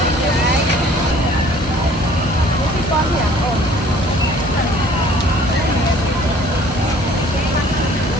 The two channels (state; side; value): normal; both; correlation 0.54